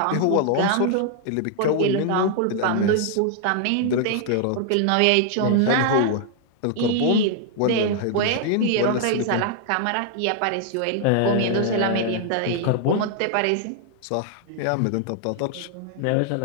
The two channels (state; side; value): different; both; correlation 0.00